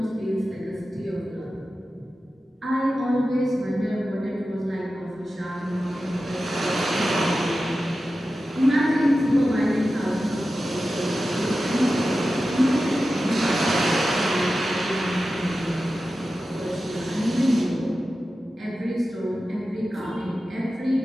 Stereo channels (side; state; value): both; normal; correlation 0.93